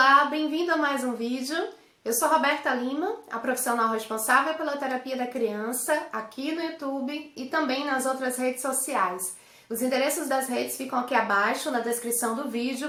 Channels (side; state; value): both; identical; correlation 1.00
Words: bem-vindo a mais um vídeo. Eu sou Roberta Lima, a profissional responsável pela terapia da criança aqui no YouTube e também nas outras redes sociais. Os endereços das redes ficam aqui abaixo na descrição do